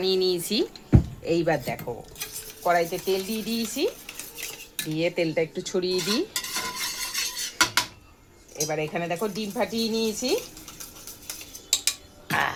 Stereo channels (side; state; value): both; identical; correlation 1.00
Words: নিয়েছি। এইবার দেখো কড়াইতে তেল দিয়ে দিয়েছি, দিয়ে তেলটা একটু ছড়িয়ে দিই। এবার এখানে দেখো ডিম ফাটিয়ে নিয়েছি।